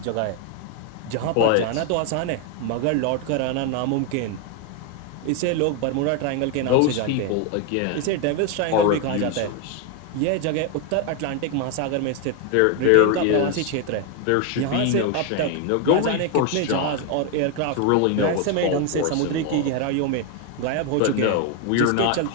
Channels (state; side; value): different; both; correlation 0.01